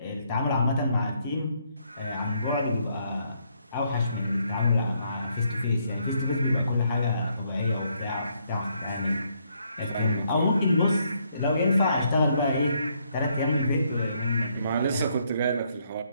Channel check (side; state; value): both; inverted; correlation -0.72